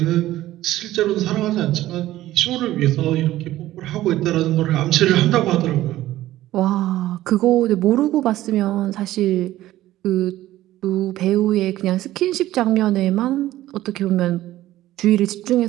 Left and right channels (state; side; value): quieter; left; 15.0 dB